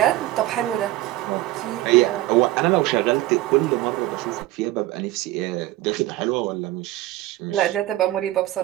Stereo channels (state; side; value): quieter; left; 16.3 dB